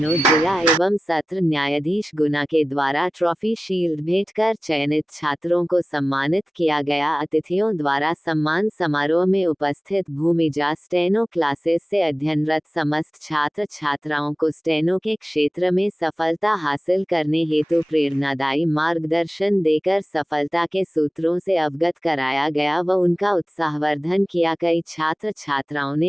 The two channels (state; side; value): normal; both; correlation 0.97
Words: जिला एवं सत्र न्यायाधीश गुना के द्वारा ट्रॉफी शील्ड भेंट कर चयनित छात्रों को सम्मानित किया गया। अतिथियों द्वारा सम्मान समारोह में उपस्थित भूमिजा स्टेनो क्लासेस से अध्ययनरत समस्त छात्र छात्राओं को स्टेनो के क्षेत्र में सफलता हासिल करने हेतु प्रेरणादायी मार्गदर्शन देकर सफलता के सूत्रों से अवगत कराया गया व उनका उत्साहवर्धन किया। कई छात्र छात्राओं